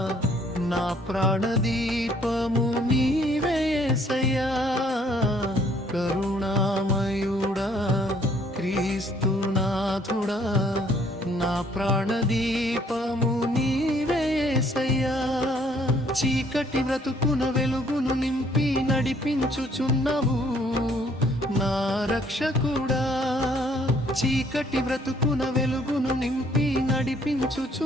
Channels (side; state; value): both; normal; correlation 0.63